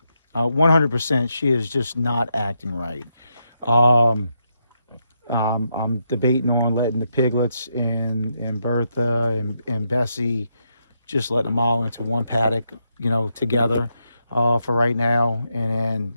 100%, she is just not acting right. I'm debating on letting the piglets and Bertha and Bessie, just letting them all into one paddock, you know, together for right now, and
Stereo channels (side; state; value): both; inverted; correlation -0.81